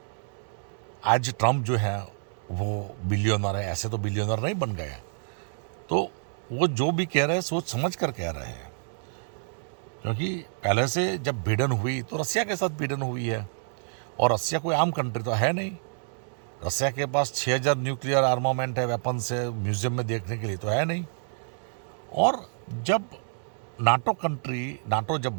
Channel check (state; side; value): silent; left; digital silence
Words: आज ट्रंप जो है वो बिलियनर है, ऐसे तो बिलियनर नहीं बन गए। तो वो जो भी कह रहे हैं सोच समझ कर कह रहे हैं, क्योंकि पहले से जब भिड़न हुई तो रसिया के साथ भिड़न हुई है, और रसिया कोई आम कंट्री तो है नहीं। रसिया के पास 6000 न्यूक्लियर आर्मामेंट है, वेपन्स है, म्यूजियम में देखने के लिए तो है नहीं। और जब नाटो जब